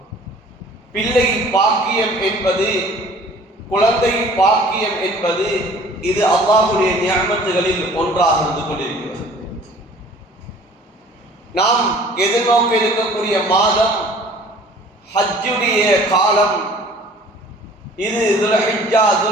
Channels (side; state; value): both; normal; correlation 0.50